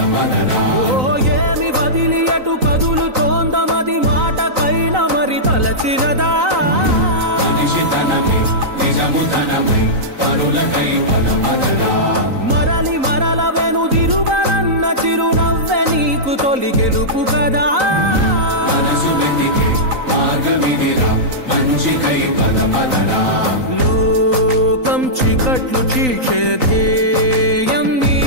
ఏమి వదిలి అటు కదులుతోందమది మాటకైన మరి తలచినదా మనిషితనమై నిజముతనమై పరులకై పదపదరా మరలి మరల వెనుదిరుగనన్న చిరునవ్వె నీకు తొలి గెలుపు కదా మనసు వెతికే మార్గమిదిరా మంచికై పదపదరా లోకం చీకట్లు చీల్చే ధ్యేయం నీ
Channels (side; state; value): left; late; 3.9 ms